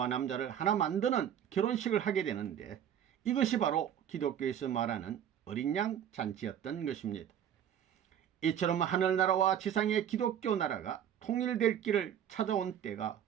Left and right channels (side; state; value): left; quieter; 9.6 dB